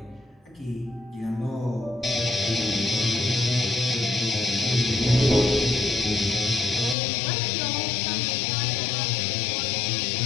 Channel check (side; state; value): right; drops out; at 7.0 s